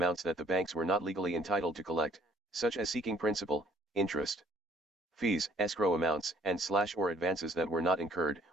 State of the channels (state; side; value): normal; both; correlation 0.60